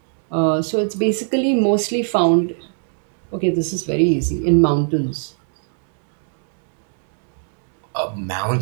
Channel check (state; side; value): silent; left; 64 dB below the other